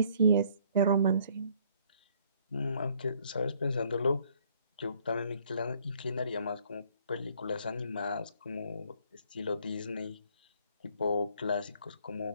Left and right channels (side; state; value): both; inverted; correlation -0.63